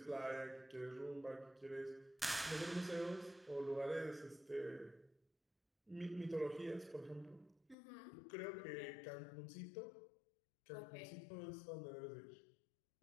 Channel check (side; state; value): right; drops out; at 7.8 s